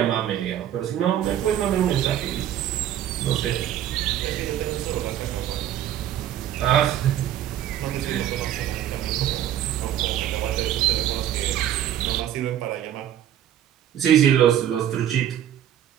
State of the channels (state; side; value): quieter; left; 11.2 dB